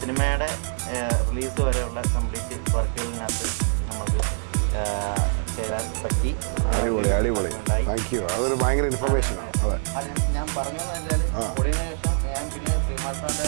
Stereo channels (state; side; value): silent; left; digital silence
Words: സിനിമയുടെ റിലീസ് വരെയുള്ള കംപ്ലീറ്റ് വർക്കുകളിനകത്ത് നമുക്ക് ചേരാൻ പറ്റി. അതൊരു ഭയങ്കര ഇൻഫർമേഷനാണ്. ഞാൻ പറഞ്ഞതെന്ന് വെച്ചാൽ ഓടിയതിനു ശേഷം ഞാൻ പിന്നെ ശ്രീമാൻ സാറിൻ്റെ